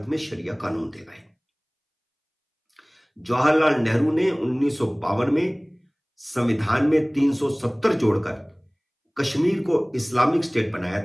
में शरिया कानून दे गए। जवाहरलाल नेहरू ने 1952 में संविधान में 370 जोड़कर कश्मीर को इस्लामिक स्टेट बनाया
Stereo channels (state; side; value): identical; both; correlation 1.00